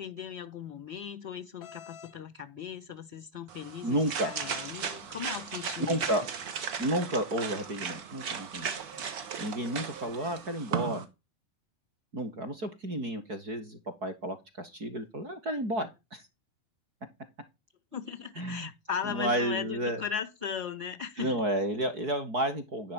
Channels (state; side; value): late; left; 4.7 ms